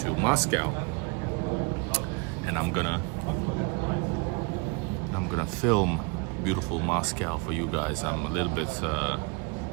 Moscow. And I'm gonna film beautiful Moscow for you guys. I'm a little bit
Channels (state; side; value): quieter; left; 30.5 dB